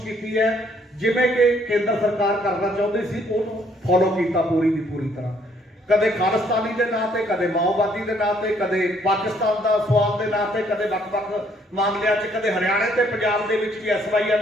ਕੀਤੀ ਹੈ। ਜਿਵੇਂ ਕਿ ਕੇਂਦਰ ਸਰਕਾਰ ਕਰਨਾ ਚਾਹੁੰਦੀ ਸੀ ਉਹਨੂੰ ਫੋਲੋ ਕੀਤਾ ਪੂਰੀ ਦੀ ਪੂਰੀ ਤਰ੍ਹਾਂ। ਕਦੇ ਖਾਲਿਸਤਾਨੀ ਦੇ ਨਾਂ ਤੇ, ਕਦੇ ਮਾਓਵਾਦੀ ਦੇ ਨਾਂ ਤੇ, ਕਦੇ ਪਾਕਿਸਤਾਨ ਦਾ ਸਵਾਲ ਦੇ ਨਾਂ ਤੇ, ਕਦੇ ਵੱਖ-ਵੱਖ ਮਾਮਲਿਆਂ 'ਚ, ਕਦੇ ਹਰਿਆਣੇ ਤੇ ਪੰਜਾਬ ਦੇ ਵਿੱਚ ਵੀ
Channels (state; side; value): normal; both; correlation 0.66